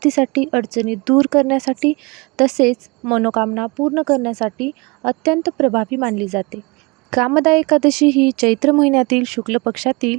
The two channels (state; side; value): quieter; left; 27.1 dB